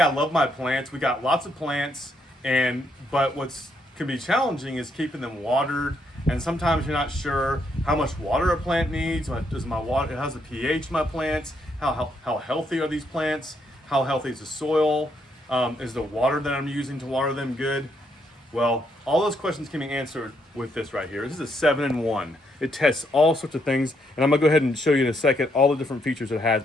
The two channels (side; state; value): both; normal; correlation 0.75